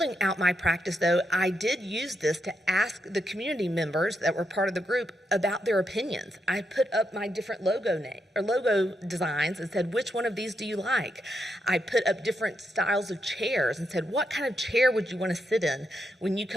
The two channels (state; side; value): normal; both; correlation 0.82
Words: out my practice, though, I did use this to ask the community members that were part of the group, about their opinions. I put up my different logo designs and said, which one of these do you like? I put up different styles of chairs and said, what kind of chair would you want to sit in when you